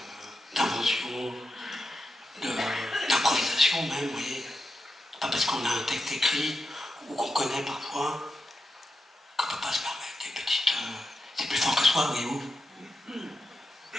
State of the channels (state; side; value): normal; both; correlation 0.88